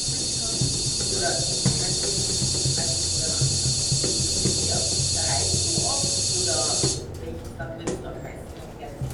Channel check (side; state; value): both; identical; correlation 1.00